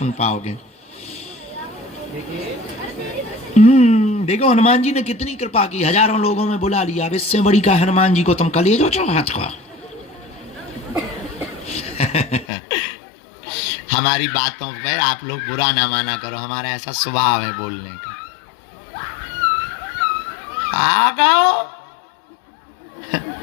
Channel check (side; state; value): right; drops out; at 12.5 s